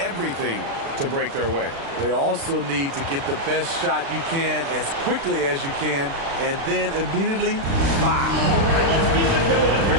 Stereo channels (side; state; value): left; late; 36 ms